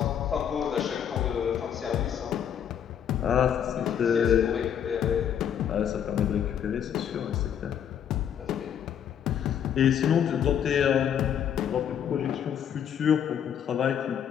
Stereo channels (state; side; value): quieter; right; 8.9 dB